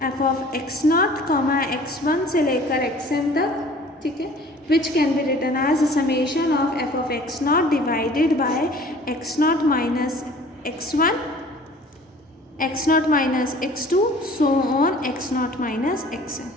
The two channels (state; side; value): normal; both; correlation 0.49